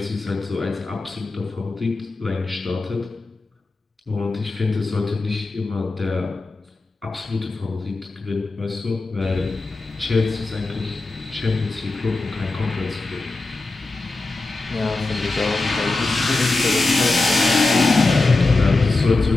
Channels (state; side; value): quieter; right; 3.4 dB